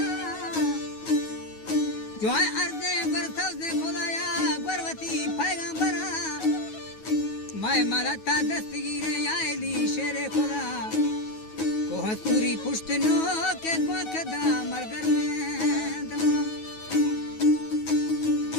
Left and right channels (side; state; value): right; late; 9.4 ms